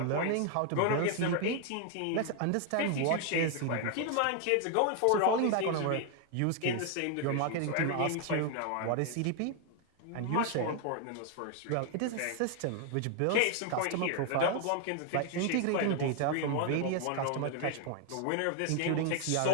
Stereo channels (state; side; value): different; both; correlation 0.00